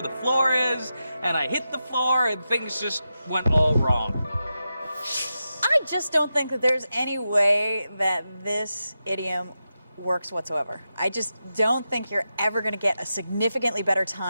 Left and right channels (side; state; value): both; inverted; correlation -0.89